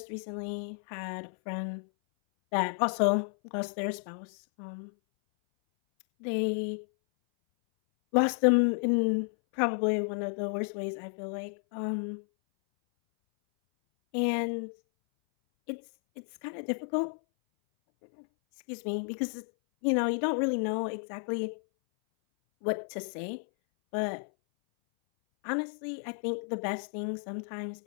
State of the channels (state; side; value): silent; right; 57 dB below the other